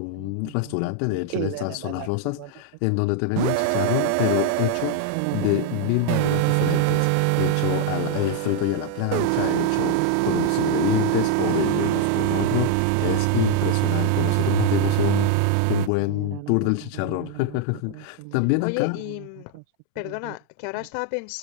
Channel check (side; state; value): both; different; correlation 0.01